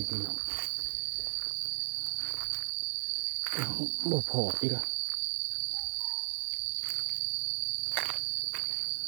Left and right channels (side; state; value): left; silent; digital silence